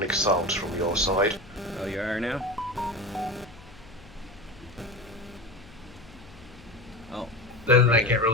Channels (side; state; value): left; noise; hum, 21 dB below the sound